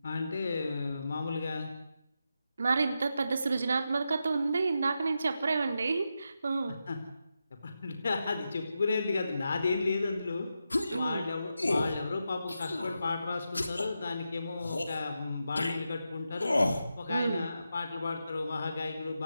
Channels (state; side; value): inverted; both; correlation -0.87